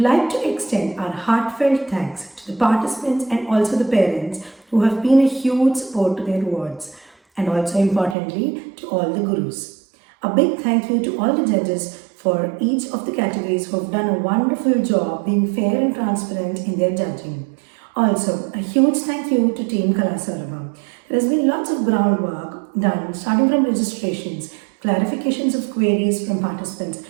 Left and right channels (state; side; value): drops out; left; at 8.2 s